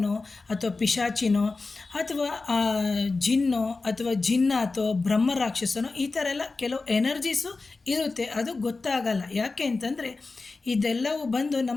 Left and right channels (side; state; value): right; quieter; 3.8 dB